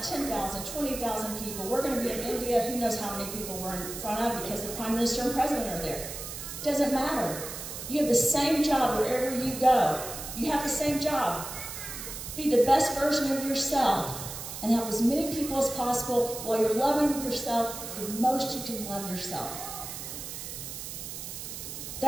10,000, 20,000 people, we're going to be in India, who knows how many people we're in front of because the Prime Minister and President are there. Doesn't matter. You have the same job wherever you go. You have the same job. Be the best version of yourself and help as many people as possible while you're loving yourself the most you can love yourself.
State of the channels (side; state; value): right; noise; hiss, 8 dB below the sound